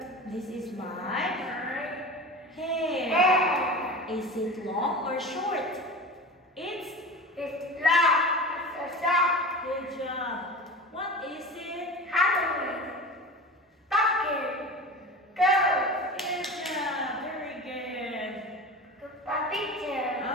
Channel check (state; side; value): normal; both; correlation 0.32